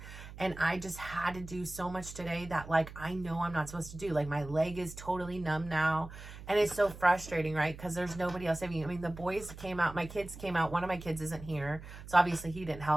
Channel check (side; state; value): right; noise; hum, 14 dB below the sound